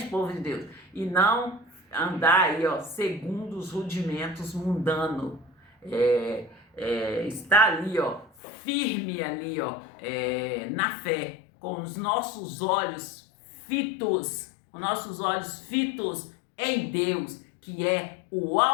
povo de Deus? E não andar aí, ó, segundo os rudimentos mundanos. Está ali, ó, firme ali, ó, na fé, com os nossos olhos fitos em Deus, que é o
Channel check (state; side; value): drops out; right; at 8.3 s